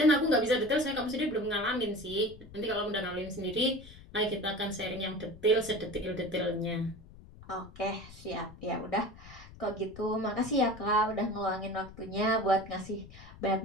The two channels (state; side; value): noise; left; rumble, 18 dB below the sound